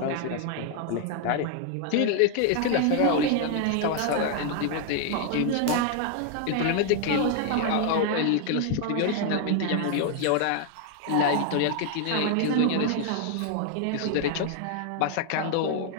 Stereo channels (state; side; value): different; both; correlation 0.00